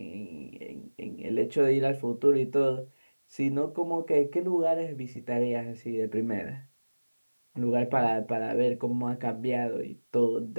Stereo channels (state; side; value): inverted; both; correlation -1.00